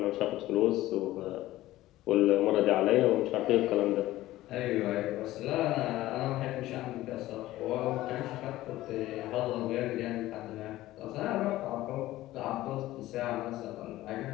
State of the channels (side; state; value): right; quieter; 16.0 dB